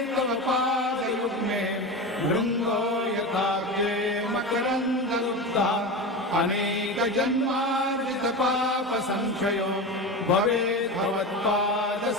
तव पादयुग्मे भृङ्गो यथाव्ये मकरन्दगुप्ता अनेकजन्मार्जितपापसंक्षयो भवेत्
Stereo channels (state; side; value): normal; both; correlation 0.24